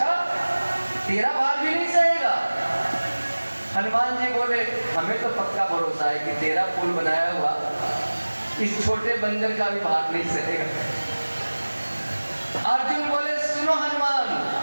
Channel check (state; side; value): inverted; both; correlation -1.00